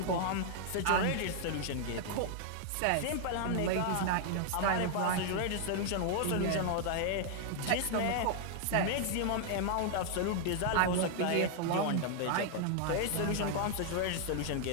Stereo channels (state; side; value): different; both; correlation 0.00